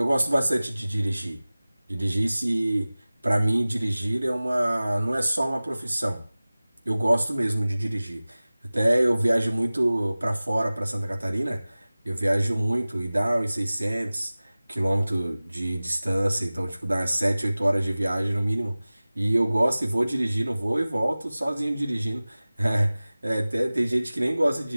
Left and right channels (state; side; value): inverted; both; correlation -0.98